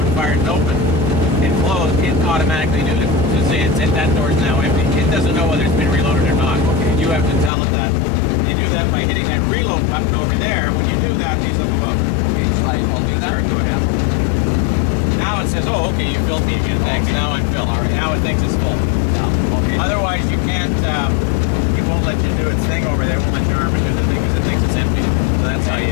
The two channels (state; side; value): drops out; right; at 7.5 s